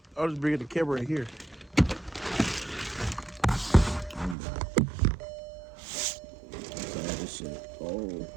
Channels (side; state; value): left; drops out; at 4.4 s